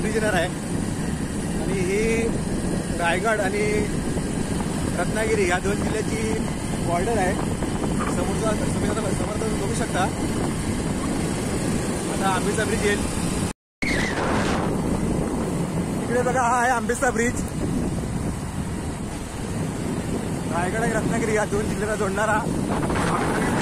ब्रिज येणार आहे आणि ही रायगड आणि रत्नागिरी या दोन जिल्ह्याची बॉर्डर आहे. समोर तुम्ही बघू शकता. आता आंबेचा ब्रिज येईल. इकडे बघा हा आहे आंबेचा ब्रिज. रायगड आणि रत्नागिरी या दोन जिल्ह्याला जोडणारा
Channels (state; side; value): identical; both; correlation 1.00